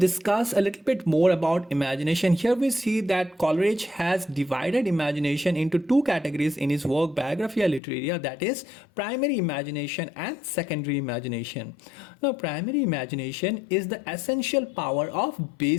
a little bit more about imagination. Here we see that Coleridge has divided imagination into two categories in his work Biographia Literaria, that is primary imagination and secondary imagination. Now primary imagination is the essential power of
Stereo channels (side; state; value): right; drops out; at 7.8 s